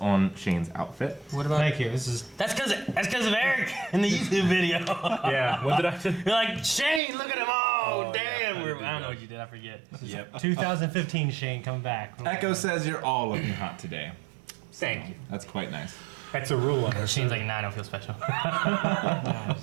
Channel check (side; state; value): left; drops out; at 7.0 s